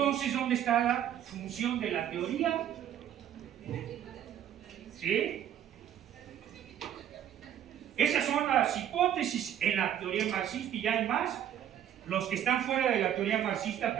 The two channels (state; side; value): quieter; left; 10.3 dB